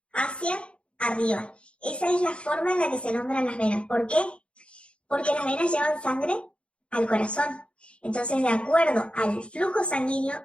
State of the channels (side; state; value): right; late; 0.058 ms